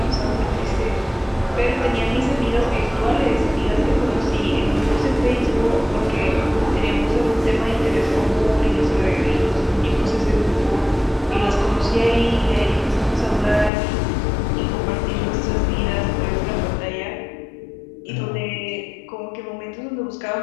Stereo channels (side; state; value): right; drops out; at 13.7 s